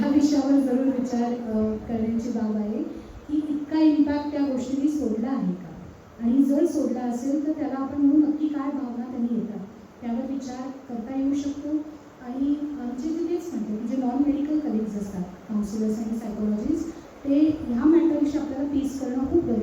विषयावर जरूर विचार करण्याची बाब आहे की इतका इम्पॅक्ट त्या गोष्टींनी सोडला आहे का, आणि जर सोडला असेल तर त्याला आपण म्हणून नक्की काय भावना त्यांनी येतात त्यावर विचार करता येऊ शकतो. आणि आमचे जे तेच म्हणते की जे नॉन मेडिकल कलिग्स असतात, काउन्सिलर्स आणि सायकोलॉजिस्ट, ते ह्या मॅटरविषयी आपल्याला पीस करणं खूप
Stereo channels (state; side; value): identical; both; correlation 1.00